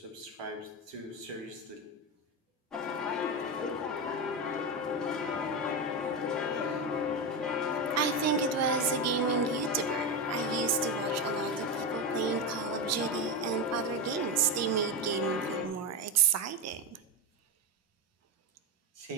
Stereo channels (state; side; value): normal; both; correlation 0.14